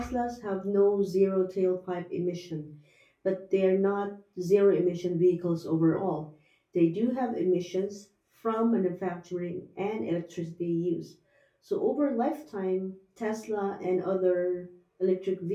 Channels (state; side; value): identical; both; correlation 1.00